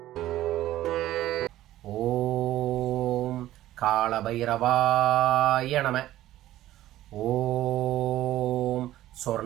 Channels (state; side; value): quieter; left; 14.4 dB